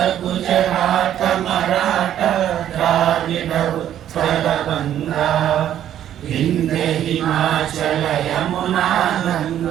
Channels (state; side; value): quieter; left; 10.9 dB